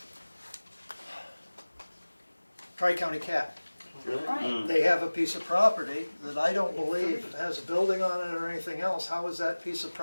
Tri-County Cat. really? right. They have a piece of property that I don't believe has a building on it or anything else. How is that piece of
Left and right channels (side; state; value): both; inverted; correlation -1.00